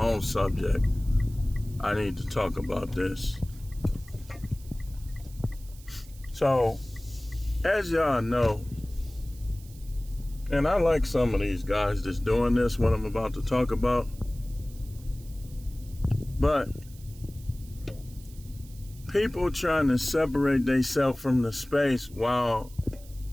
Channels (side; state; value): right; noise; hiss, 23 dB below the sound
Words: subject. I need to talk about this. So, as y'all know, and I like some of these guys that's doing this, what I'm about to talk about, but people trying to separate themselves from the space while